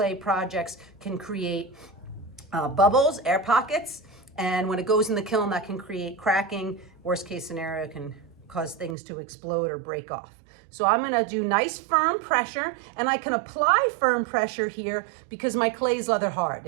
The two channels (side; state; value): left; drops out; at 9.0 s